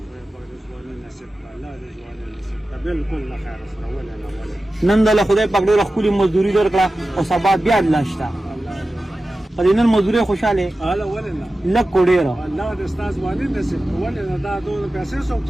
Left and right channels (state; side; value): normal; both; correlation 0.94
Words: ځواني نصیب کړي، الله دې ځواني نصیب کړي. بالکل له خیر سره ولې نه ولې. نن دله خدای پاک ډېره ښکلې مزدوري درکړه او سبا بیا الله شته الله دې په دې نن مزدورۍ خوشحاله الله ولې نه. لږ کو ډېره الله دې ستا ځواني نصیب کړي. ولې نه دا دونه پیسې څوک